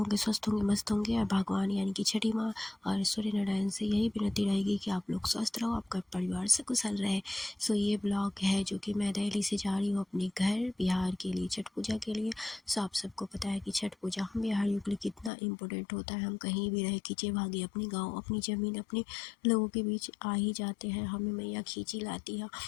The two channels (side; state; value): right; drops out; at 15.3 s